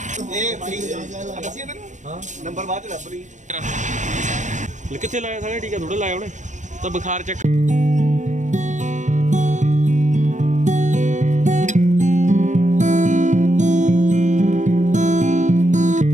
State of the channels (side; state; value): left; late; 0.35 ms